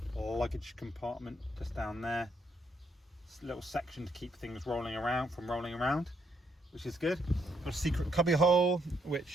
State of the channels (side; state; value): both; normal; correlation 0.74